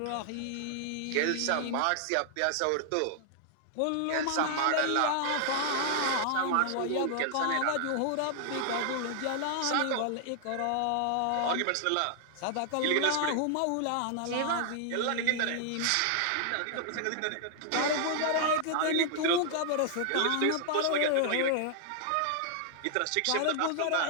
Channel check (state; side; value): different; both; correlation -0.01